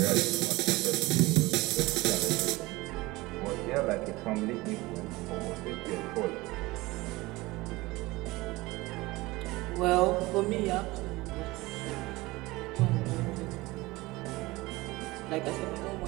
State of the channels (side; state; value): left; quieter; 20.9 dB